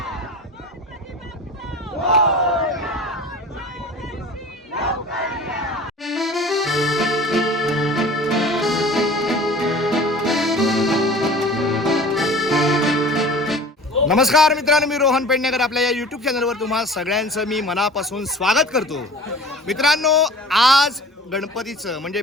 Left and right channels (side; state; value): both; normal; correlation 0.41